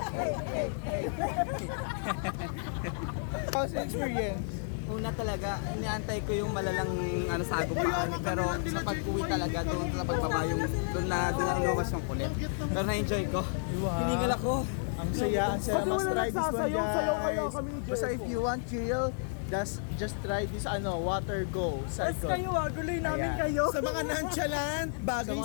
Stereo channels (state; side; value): silent; right; digital silence